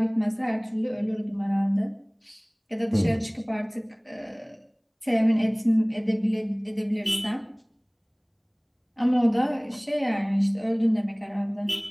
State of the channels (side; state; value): both; identical; correlation 1.00